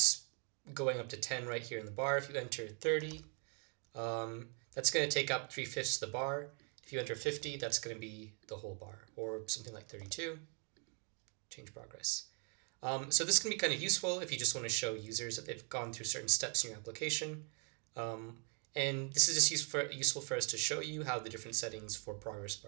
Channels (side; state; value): left; quieter; 39.7 dB